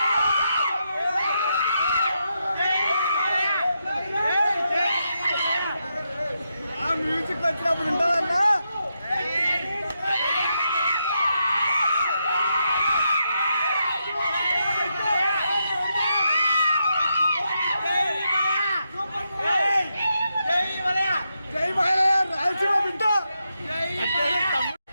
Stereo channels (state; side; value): inverted; both; correlation -0.84